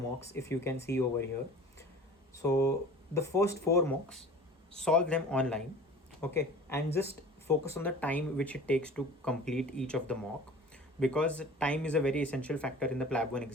if you can see over here. So the first four mocks, solve them online, okay, and just focus on the time which it takes to complete each of the mock, because time is a very essential factor in the PLAB 1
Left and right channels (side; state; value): both; normal; correlation 0.42